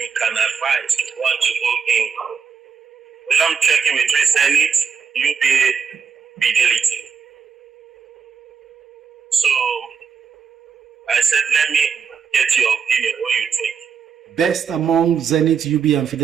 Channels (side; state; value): left; quieter; 6.4 dB